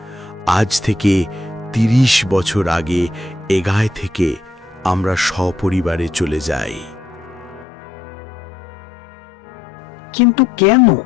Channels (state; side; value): drops out; right; at 7.7 s